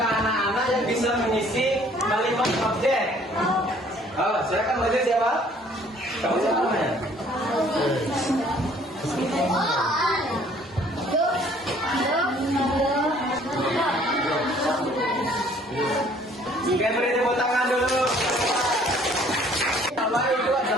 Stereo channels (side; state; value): both; normal; correlation 0.58